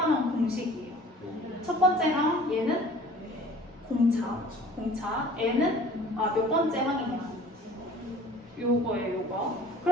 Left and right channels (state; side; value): normal; both; correlation 0.48